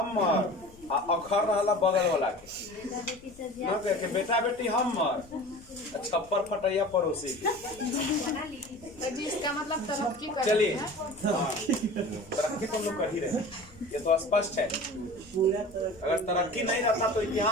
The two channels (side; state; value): left; noise; rumble, 24 dB below the sound